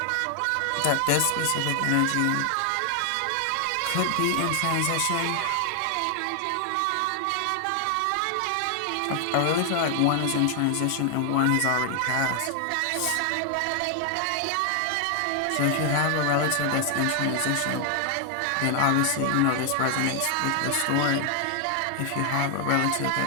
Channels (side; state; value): both; different; correlation 0.00